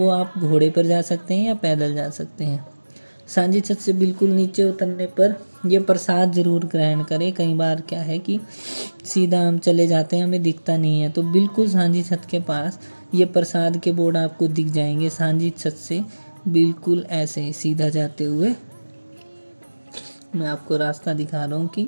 आप घोड़े पर जा सकते हैं या पैदल जा सकते हैं। सांझी छत से बिल्कुल नीचे उतरने पर ये प्रसाद ज़रूर ग्रहण करें। कई बार क्या है कि सीधा हम चले जाते हैं, हमें दिखता नहीं है, तो बिल्कुल सांझी छत के पास ये प्रसाद के बोर्ड आपको दिख जाएंगे। सांझी छत से बिल्कुल ऐसे सीधा जाते हुए मैं आपको रास्ता दिखा रहा हूँ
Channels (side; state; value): both; inverted; correlation -1.00